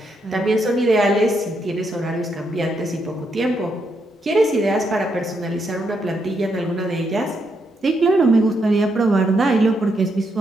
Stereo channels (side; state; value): both; normal; correlation 0.79